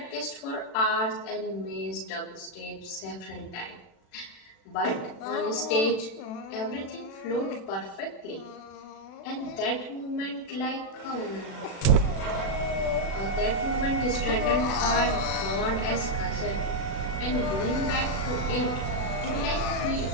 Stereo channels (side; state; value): right; late; 36 ms